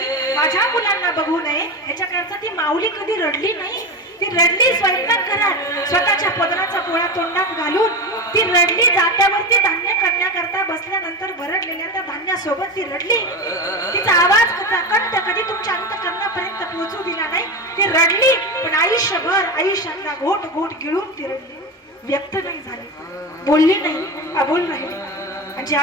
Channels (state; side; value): normal; both; correlation 0.21